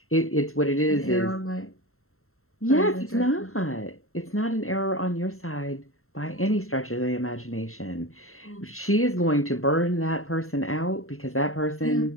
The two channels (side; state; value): right; late; 0.62 ms